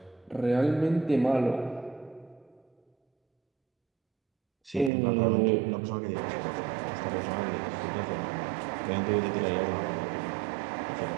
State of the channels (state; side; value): drops out; left; at 4.9 s